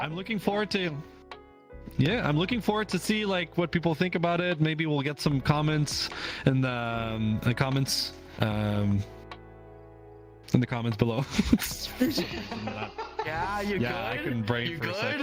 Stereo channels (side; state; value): both; identical; correlation 1.00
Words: me. I'm looking forward to see like what people think about it. Maybe we'll get some comments in the comments below. Yeah, you good? I couldn't brain for a